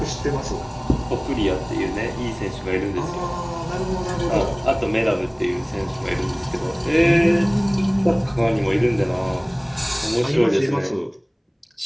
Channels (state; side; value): identical; both; correlation 1.00